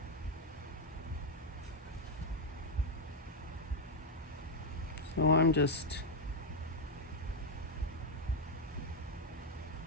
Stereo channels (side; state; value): both; normal; correlation 0.02